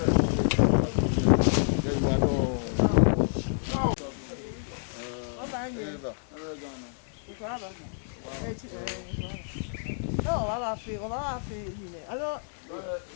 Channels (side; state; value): right; silent; digital silence